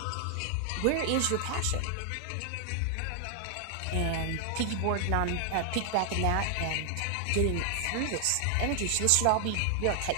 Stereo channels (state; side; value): different; both; correlation 0.00